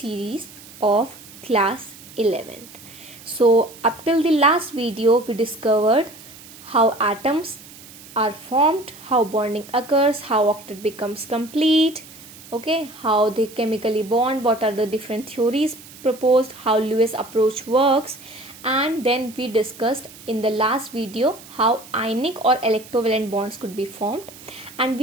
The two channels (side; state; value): right; noise; hiss, 19 dB below the sound